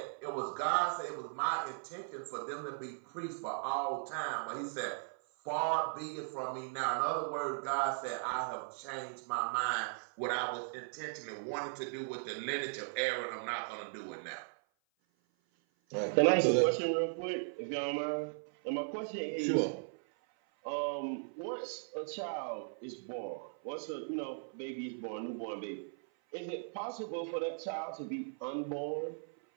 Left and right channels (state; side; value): silent; left; 53 dB below the other